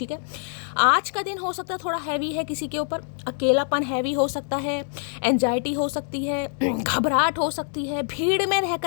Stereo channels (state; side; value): silent; right; 62 dB below the other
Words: है, आज का दिन हो सकता है थोड़ा हैवी है किसी के ऊपर, अकेलापन हैवी हो सकता है, एंजाइटी हो सकती है, घबराहट हो सकती है, भीड़ में